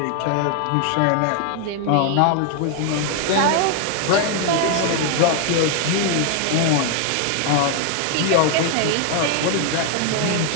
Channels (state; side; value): different; both; correlation 0.00